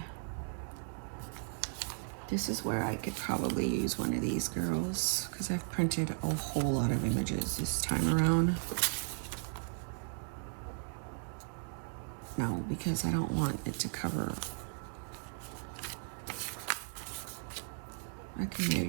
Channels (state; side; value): silent; left; 54 dB below the other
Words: This is where I could probably use one of these girls because I've printed a whole lot of images this time around. No, because I don't want it to cover. I can